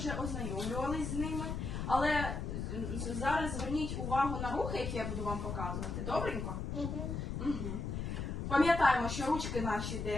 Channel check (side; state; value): left; noise; rumble, 3 dB below the sound